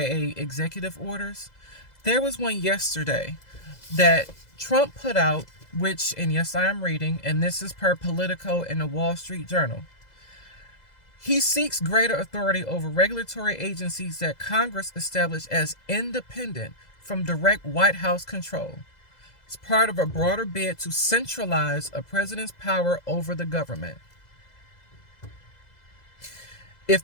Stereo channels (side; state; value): right; late; 2.0 ms